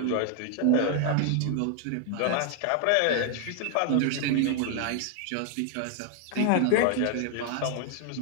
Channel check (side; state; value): both; different; correlation 0.00